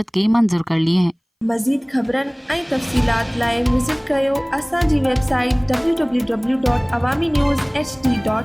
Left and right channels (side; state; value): both; identical; correlation 1.00